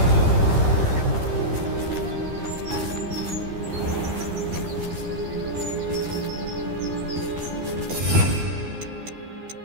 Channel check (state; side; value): late; left; 13 ms